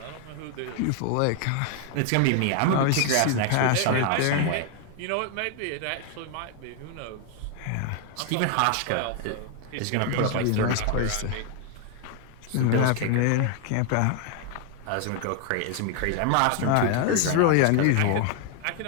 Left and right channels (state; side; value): different; both; correlation 0.00